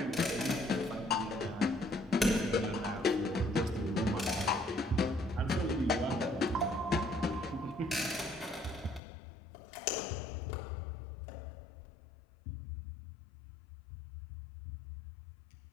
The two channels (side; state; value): right; drops out; at 9.0 s